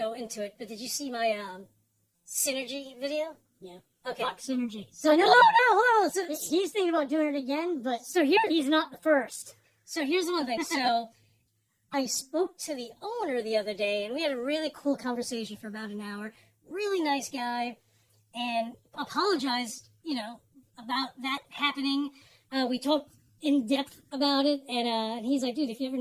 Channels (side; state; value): both; identical; correlation 1.00